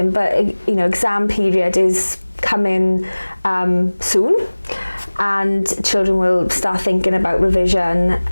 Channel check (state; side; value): inverted; both; correlation -1.00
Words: but you know, exam period is coming soon, and children will start thinking about revision,